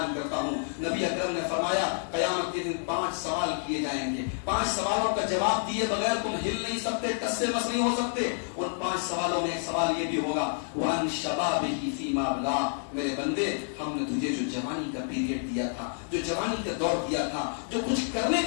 کرتا ہوں, نبی اکرم نے فرمایا قیامت کے دن 5 سوال کیے جائیں گے. 5 سوالوں کا جواب دیے بغیر تم ہل نہیں سکتے, ٹس سے مس نہیں ہو سکتے. ان 5 سوالوں میں ایک سوال یہ بھی ہوگا وَعَنْ شَبَابِهِ فِيمَا أَبْلَىٰ, میرے بندے ہم نے تجھے جو جوانی کا پیریڈ دیا تھا, جو جوانی کا دور دیا تھا, جو کچھ کرنے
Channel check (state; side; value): silent; right; digital silence